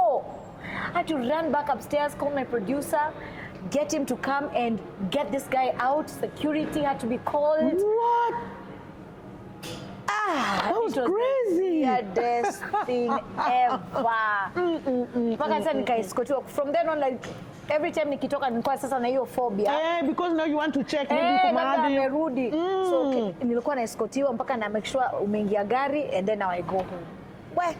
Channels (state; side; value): identical; both; correlation 1.00